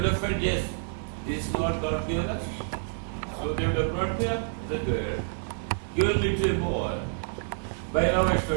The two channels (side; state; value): left; silent; digital silence